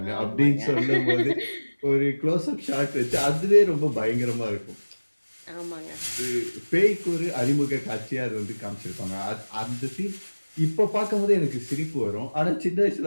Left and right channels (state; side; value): inverted; both; correlation -1.00